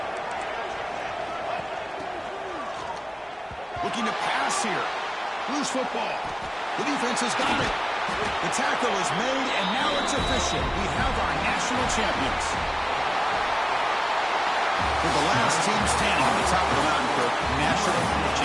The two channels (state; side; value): identical; both; correlation 1.00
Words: Looking to pass here. Loose football. The defense has got it. The tackle is made, and now it's official. We have our national champions. We're the last team standing on the top of the mountain for national